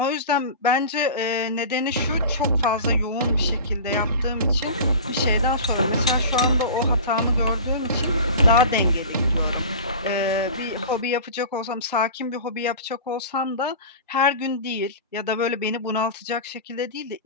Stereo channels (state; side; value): inverted; both; correlation -0.35